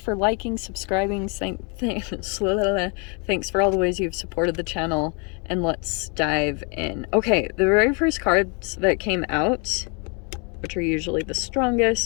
for liking, subscribing. Thanks for all the ways you've supported the channel. And let's dive in. Okay, the very first cards that came out, which are usually the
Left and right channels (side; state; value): right; quieter; 35.0 dB